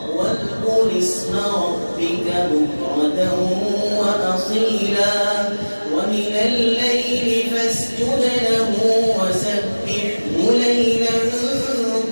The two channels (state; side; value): inverted; both; correlation -1.00